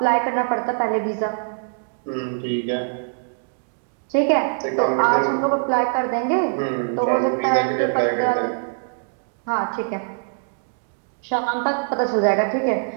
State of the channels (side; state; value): left; silent; digital silence